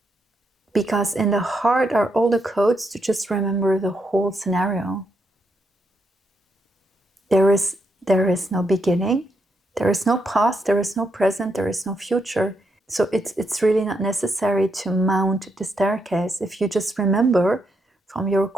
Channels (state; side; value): normal; both; correlation 0.80